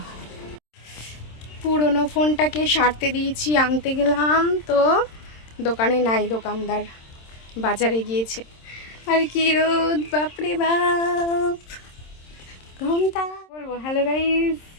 পুরনো ফোনটাকে সারতে দিয়েছি, আনতে গেলাম তো দোকানে নাই, দোকানদার বাজারে গিয়েছে। আর কি রোদ বাপরে বাপ, ঘন্টা বলবো। Hello guys,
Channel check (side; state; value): right; late; 26 ms